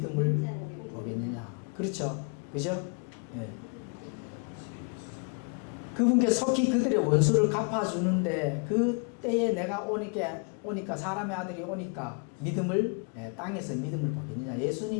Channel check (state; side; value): quieter; right; 39.3 dB